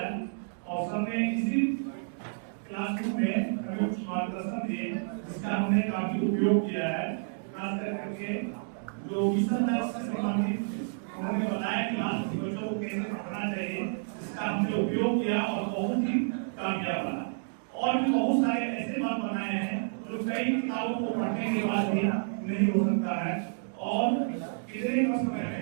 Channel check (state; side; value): silent; left; digital silence